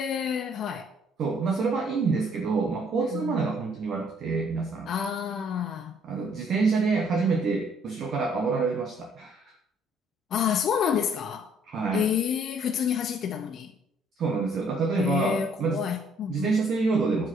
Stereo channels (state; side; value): normal; both; correlation 0.63